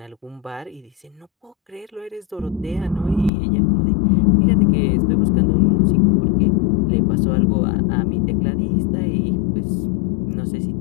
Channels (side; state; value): right; drops out; at 3.3 s